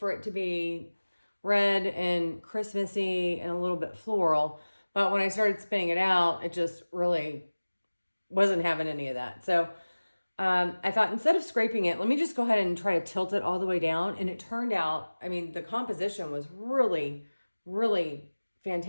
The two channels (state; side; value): inverted; both; correlation -1.00